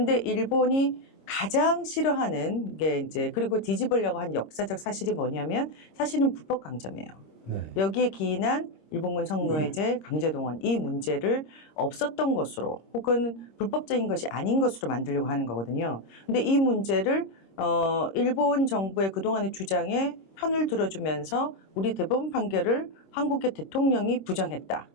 일본이 가장 싫어하는 게 이제 그리고 뒤집으려고 한 역사적 사실이 뭐냐면 사실은 불법 강점이에요. 네. 여기에 기인한 일본군 성노예제, 강제동원 이 문제를 없었던 것으로 혹은 불법적인 것이 아닌 것으로 만들려고 하는 거거든요. 근데 이 문제를 일본 정부의 그동안의 주장에 편을 들어주면서 우리 대법원 판결을 한국의 대통령이 부정했다.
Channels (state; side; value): late; right; 26 ms